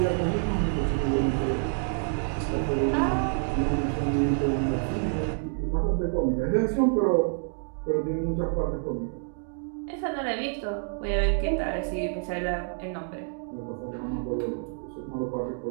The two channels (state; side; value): silent; left; 57 dB below the other